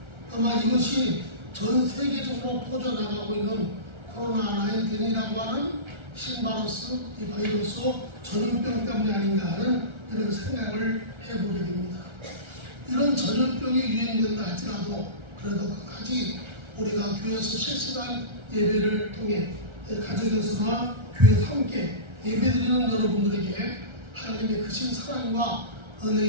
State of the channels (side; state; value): left; late; 1.3 ms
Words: 아마 이것이 전 세계적으로 퍼져나가고 있는 코로나19이라고 하는 신바이러스, 이 바이러스 전염병 때문이 아닌가 하는 이런 생각을 해보게 됩니다. 이런 전염병이 유행된다 할지라도 그래도 끝까지 우리가 교회에서 실시간 예배를 통해 가정에서나 교회에서 함께 예배드리는 여러분들에게 하나님의 크신 사랑과